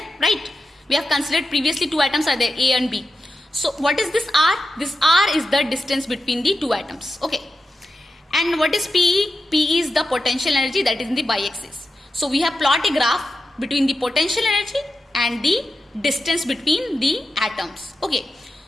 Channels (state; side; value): normal; both; correlation 0.90